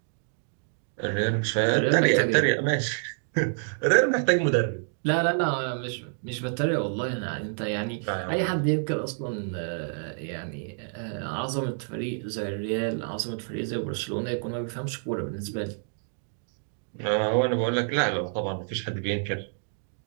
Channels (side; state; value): left; silent; digital silence